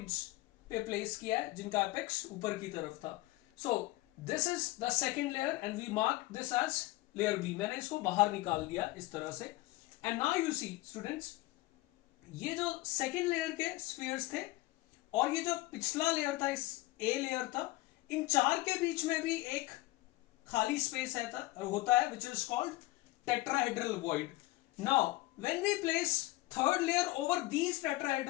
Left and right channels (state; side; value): quieter; right; 19.6 dB